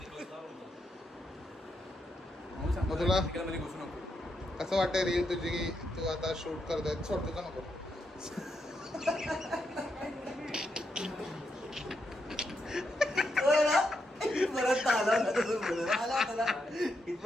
मग तुला मध्ये घुसू नको कसं वाटतंय रील तुझी की तू आता शूट करतोय सोड तुझं नको होय ना? इथपर्यंत आला होता तसं बोललं. आला होता ना.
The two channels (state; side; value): normal; both; correlation 0.82